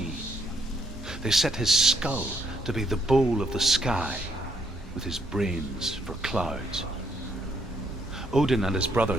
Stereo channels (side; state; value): both; normal; correlation 0.71